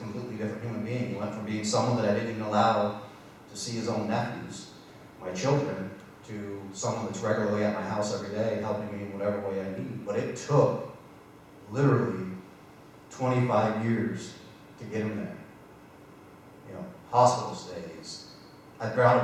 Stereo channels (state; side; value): identical; both; correlation 1.00